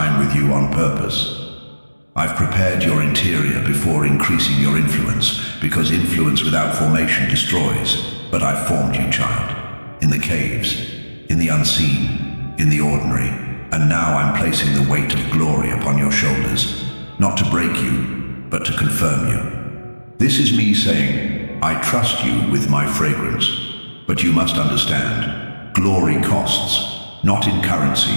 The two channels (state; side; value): inverted; both; correlation -1.00